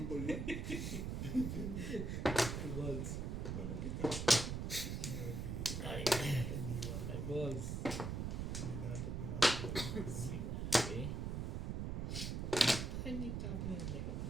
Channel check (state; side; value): noise; right; rumble, 2 dB below the sound